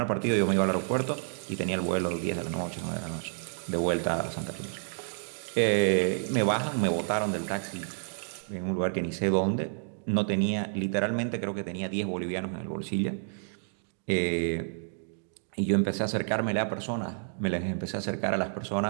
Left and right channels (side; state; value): left; silent; digital silence